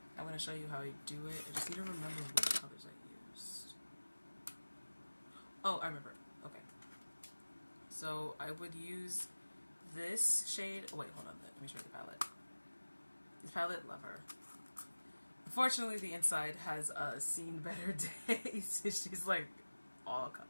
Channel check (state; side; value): inverted; both; correlation -1.00